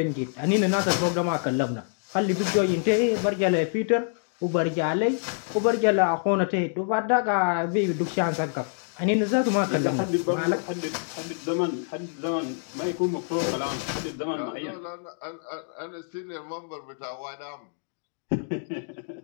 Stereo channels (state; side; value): silent; right; 61 dB below the other